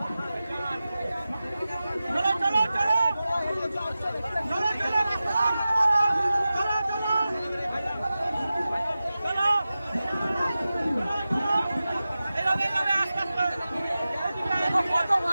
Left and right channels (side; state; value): both; inverted; correlation -0.95